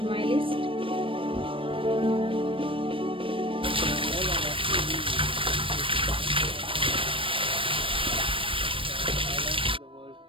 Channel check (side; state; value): left; late; 0.25 ms